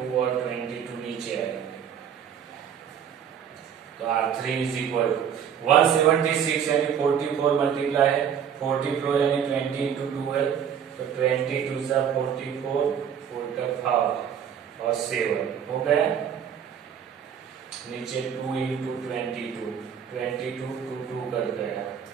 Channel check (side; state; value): left; quieter; 8.3 dB